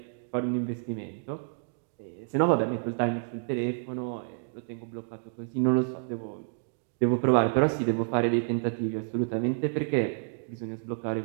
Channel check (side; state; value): left; silent; digital silence